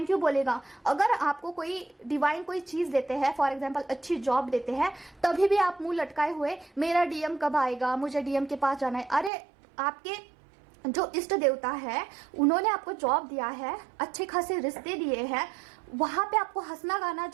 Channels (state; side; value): drops out; left; at 9.3 s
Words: यू बोलेगा। अगर आपको कोई डिवाइन कोई चीज देते हैं, फॉर एग्जाम्पल अच्छी जॉब देते हैं, तभी भी आप मुंह लटकाए हुए मेरा डीएम कब आएगा, मुझे डीएम के पास जाना है। अरे आपके जो इष्ट देवता है, उन्होंने आपको जॉब दिया है, अच्छे खासे रिश्ते दिए हैं, वहां पे आपको हंसना गाना